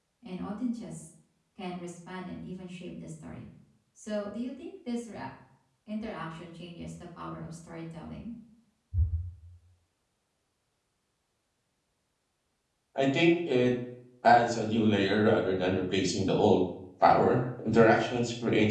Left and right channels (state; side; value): identical; both; correlation 1.00